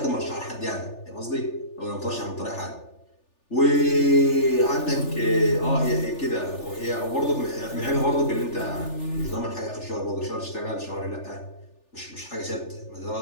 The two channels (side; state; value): right; late; 3.4 ms